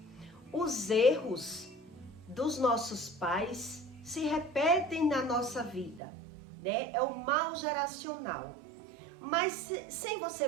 Os erros dos nossos pais se repetem na nossa vida, É o mal geracional. Mas sem você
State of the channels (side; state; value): left; drops out; at 6.0 s